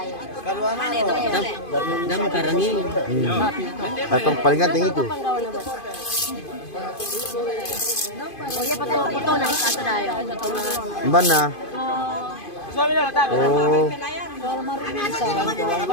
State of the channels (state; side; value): late; right; 2.5 ms